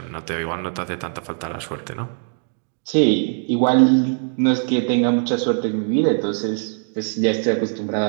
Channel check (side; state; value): left; silent; 65 dB below the other